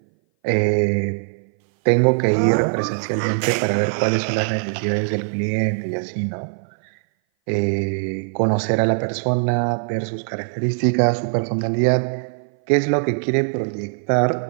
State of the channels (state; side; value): silent; left; 59 dB below the other